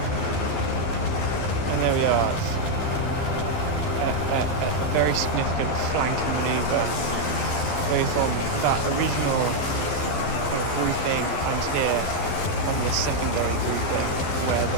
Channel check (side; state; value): right; late; 12 ms